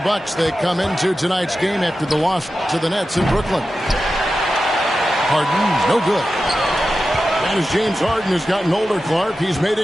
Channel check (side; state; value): both; normal; correlation 0.92